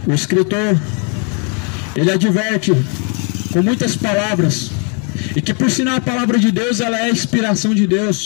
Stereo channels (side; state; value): right; quieter; 37.8 dB